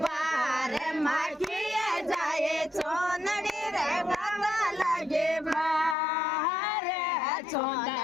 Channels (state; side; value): drops out; right; at 6.0 s